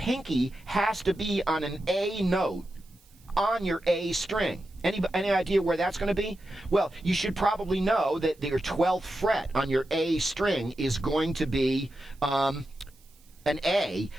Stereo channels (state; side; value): noise; right; hiss, 30 dB below the sound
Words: has to be on an A note on your A string. Any idea where that's going to be? Well, you should probably know that your 12th fret on your A string is going to be an A.